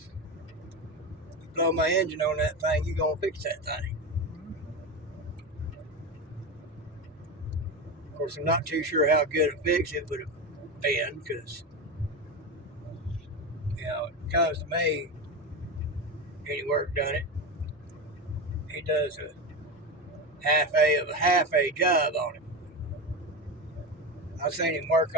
You blow my engine on that thing, you're going to fix that thing. Of course, I'm not too sure how good a fix it would have been because, you know, it comes to me, any work done it. He does a half a job on it. I've seen him work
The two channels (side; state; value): both; normal; correlation 0.20